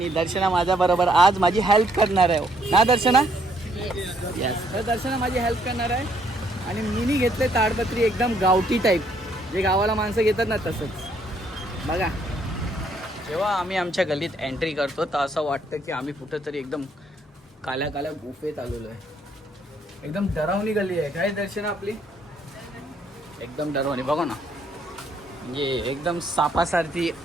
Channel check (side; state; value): both; normal; correlation 0.68